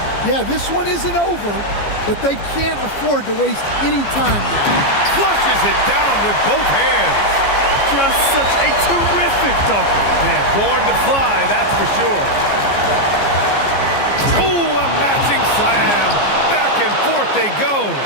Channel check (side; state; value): right; late; 15 ms